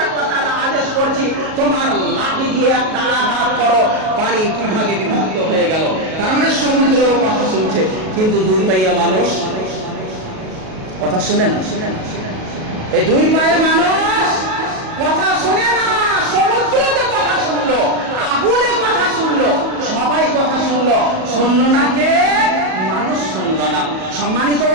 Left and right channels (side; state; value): left; late; 37 ms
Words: ওয়া তাআলা আদেশ করছি, তোমার লাঠি দিয়ে একটা আঘাত করো, পানি দুই ভাগে বিভক্ত হয়ে গেল। তার মানে সমুদ্র কথা শুনছে, কিন্তু দুই পাইয়া মানুষ কথা শুনে না। এই দুই পায়ে মানুষ কথা শুনে না। সমুদ্রতে কথা শুনলো, আগুনে কথা শুনলো, সবাই কথা শুনলো, শুনলো না কে? মানুষ শুনলো না। সম্মানিত